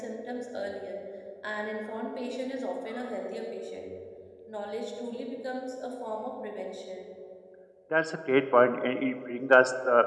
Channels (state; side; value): identical; both; correlation 1.00